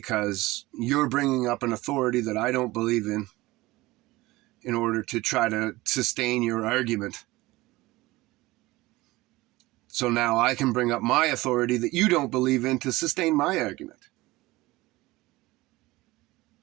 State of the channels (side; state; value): left; quieter; 19.7 dB